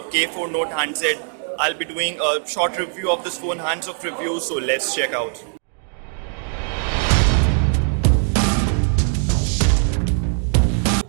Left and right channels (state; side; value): silent; left; 56 dB below the other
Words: K4 Note handset. I'll be doing a short review of this phone, hands-off review, so let's check out.